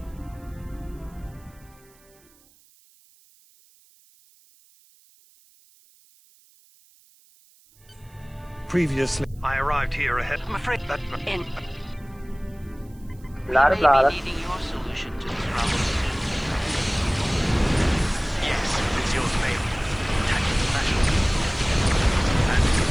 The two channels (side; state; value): right; noise; hiss, 30 dB below the sound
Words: Previously, I arrived here ahead. I'm afraid that... Blah, blah, needing your solution to this problem. Yes, it's yours, mate. Tactical special. And